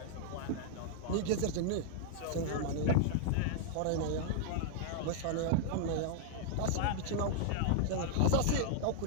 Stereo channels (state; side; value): different; both; correlation -0.01